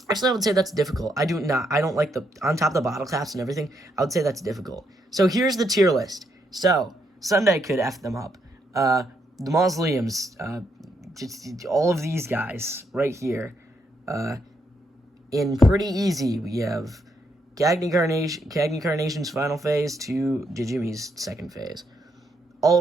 actually, I would say that's difficult. I don't like the on top of the bottle caps and everything. I would say that's difficult. So here's the tier list. So Sunday could F them up. The mausoleums, just all of these guys right here. In pretty easy, we have Cagney Carnation's final phase to Jijimi's second phase.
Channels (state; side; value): normal; both; correlation 0.77